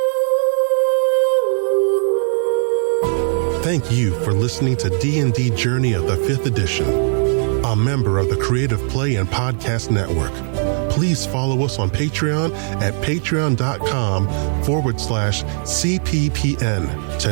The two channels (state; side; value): silent; left; digital silence